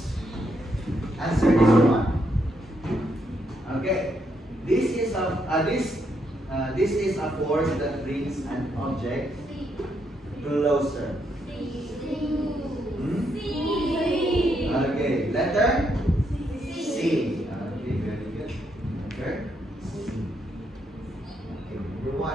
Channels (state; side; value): normal; both; correlation 0.77